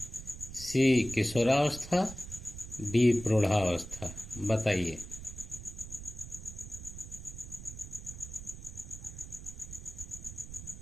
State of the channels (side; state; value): right; noise; rumble, 12 dB below the sound